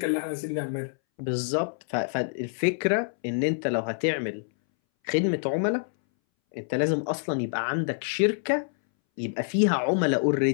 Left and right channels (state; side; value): silent; right; 60 dB below the other